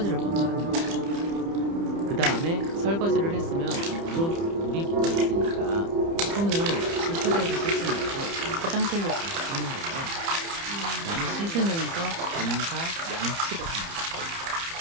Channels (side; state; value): left; late; 30 ms